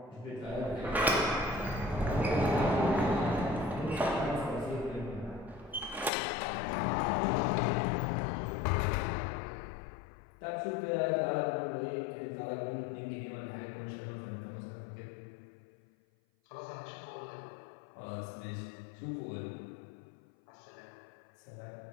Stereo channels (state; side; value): drops out; right; at 6.1 s